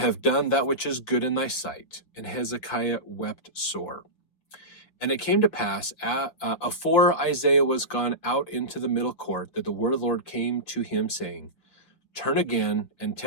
done that which is good in thy sight. And Hezekiah wept sore. And it came to pass, afore Isaiah was gone out into the middle court, that the word of the Lord came to him, saying, Turn again, and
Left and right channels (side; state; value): right; late; 5.6 ms